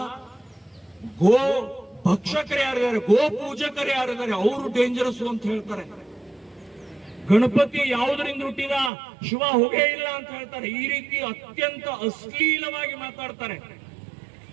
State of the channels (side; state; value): left; drops out; at 8.9 s